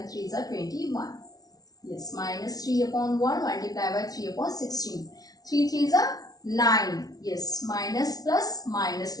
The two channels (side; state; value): right; late; 0.18 ms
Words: 3s are 21. Yes, minus 3 upon 1 multiplied by 3 upon 16. 3 3s are 9. Yes, minus plus minus